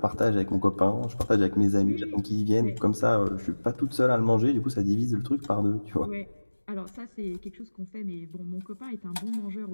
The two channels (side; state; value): both; inverted; correlation -1.00